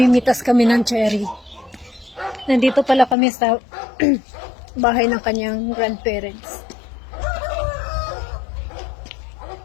kami ng cherry. Nandito pala kami sa bahay ng kanyang grandparents.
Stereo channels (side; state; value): right; drops out; at 3.2 s